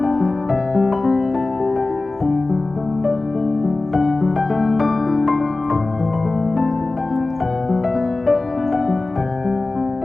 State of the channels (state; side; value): quieter; right; 3.2 dB